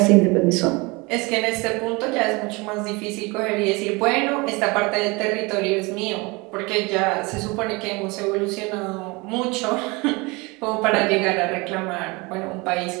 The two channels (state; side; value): quieter; left; 25.9 dB